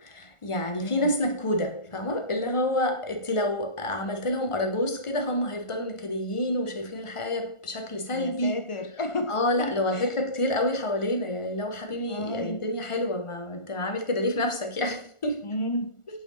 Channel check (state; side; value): late; right; 1.4 ms